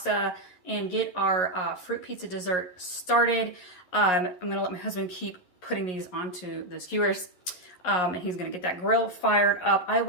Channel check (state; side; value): late; right; 11 ms